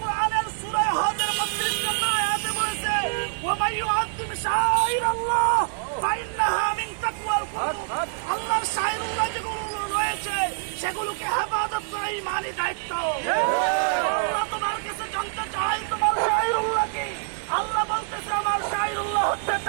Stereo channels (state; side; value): silent; left; 61 dB below the other